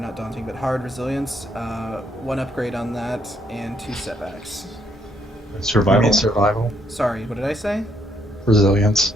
hard resilience. 1 upgrade on that, and 2 setbacks. Survival. Survival. Sorry, what did I say? Resilience.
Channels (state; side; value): normal; both; correlation 0.71